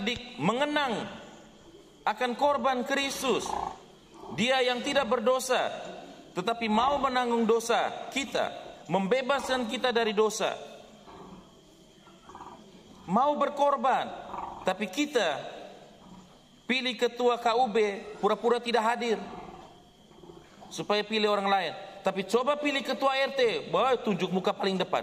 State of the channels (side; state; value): both; identical; correlation 1.00